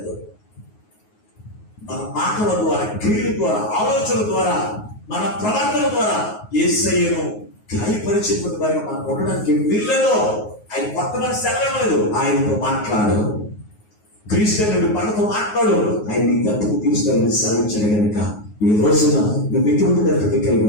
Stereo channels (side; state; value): right; late; 9.5 ms